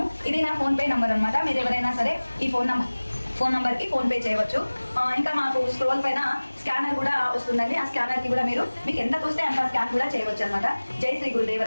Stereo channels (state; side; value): inverted; both; correlation -1.00